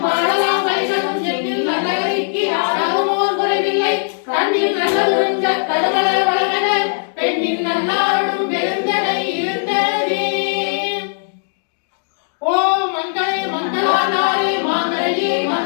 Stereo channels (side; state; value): right; silent; digital silence